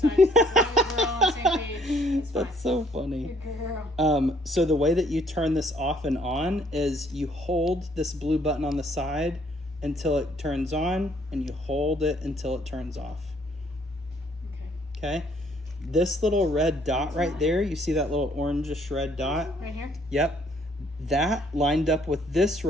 I just we're all on the same page. It's fine. that's so funny. Girl. So the way that you turn this off and on is you hold this blue button on the side until it turns on, and you hold it until it turns off. Okay? This little red dot right there, you see that little orangish red dot? Right here? Yep. That lined up with this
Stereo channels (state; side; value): normal; both; correlation 0.64